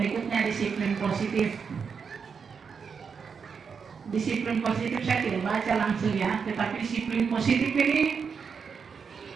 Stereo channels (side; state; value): left; quieter; 6.0 dB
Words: disiplin positif. Disiplin positif saya tidak baca langsung ya, tetapi disiplin positif ini